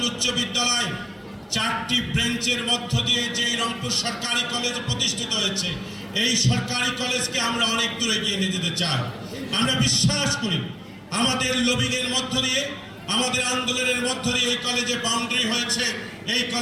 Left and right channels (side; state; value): both; identical; correlation 1.00